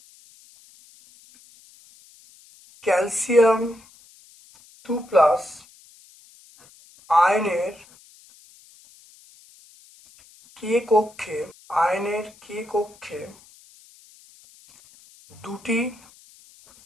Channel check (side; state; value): left; noise; hiss, 26 dB below the sound